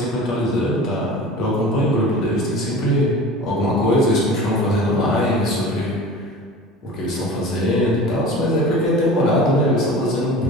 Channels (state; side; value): normal; both; correlation 0.37